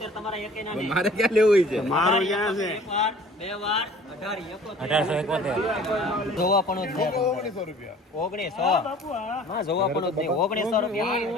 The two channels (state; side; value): normal; both; correlation 0.50